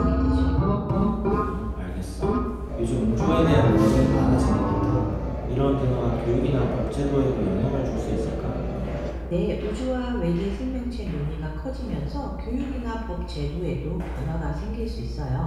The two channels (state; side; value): identical; both; correlation 1.00